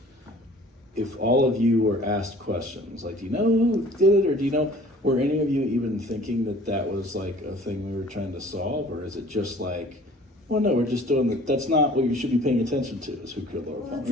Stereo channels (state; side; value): normal; both; correlation 0.50